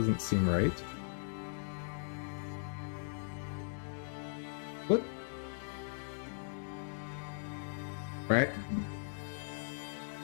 seem right. What? Right?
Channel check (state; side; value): silent; right; digital silence